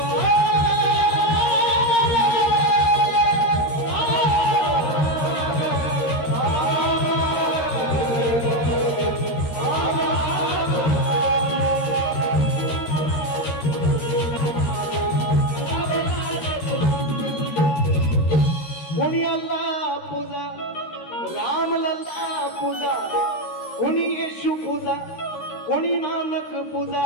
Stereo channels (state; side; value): late; right; 13 ms